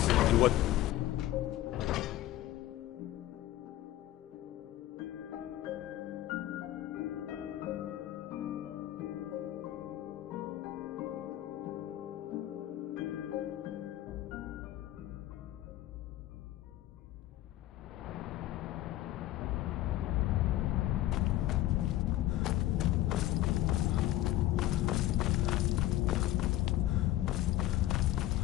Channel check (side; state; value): right; quieter; 14.7 dB